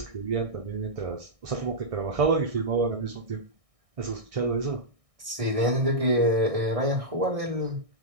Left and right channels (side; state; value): left; late; 1.6 ms